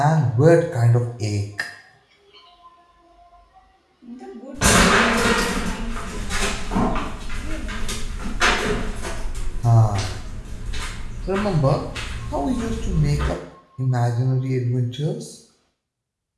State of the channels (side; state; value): both; identical; correlation 1.00